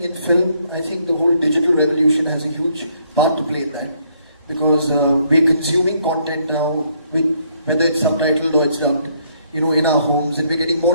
in film, I think the whole digital revolution has a huge part to play in that. Because we're consuming content now, whether it's subtitled or it's dubbed, in our homes, and we're getting more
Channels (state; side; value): inverted; both; correlation -0.69